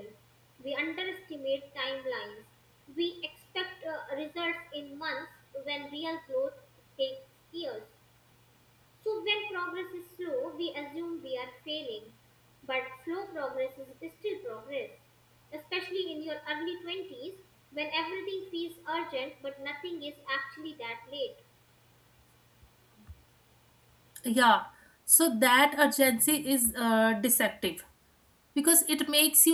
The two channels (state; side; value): identical; both; correlation 1.00